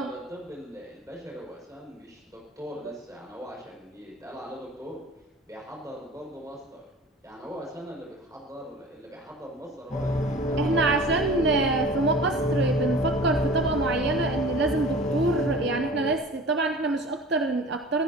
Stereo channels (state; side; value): normal; both; correlation 0.41